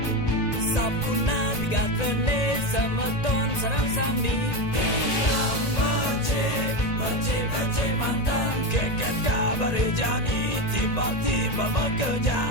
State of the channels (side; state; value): right; late; 1.9 ms